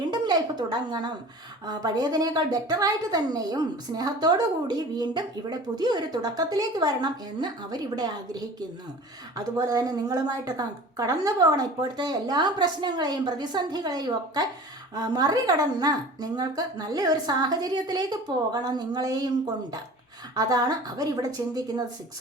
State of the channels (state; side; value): normal; both; correlation 0.41